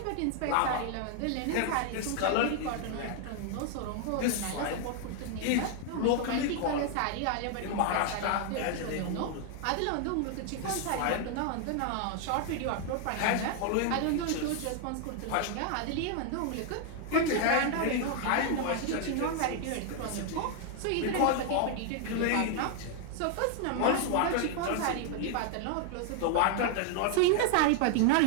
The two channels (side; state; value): both; different; correlation 0.00